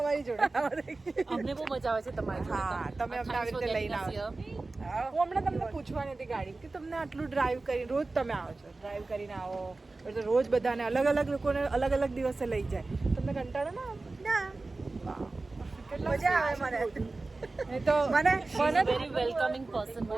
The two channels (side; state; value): left; quieter; 3.4 dB